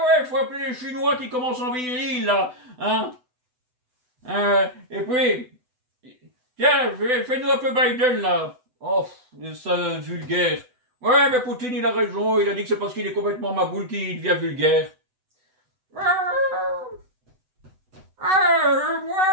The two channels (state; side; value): late; left; 8.0 ms